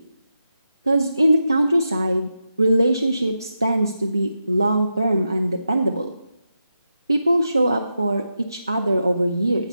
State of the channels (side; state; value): both; inverted; correlation -0.88